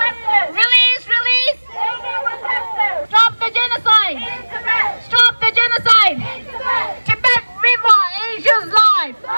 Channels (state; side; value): inverted; both; correlation -1.00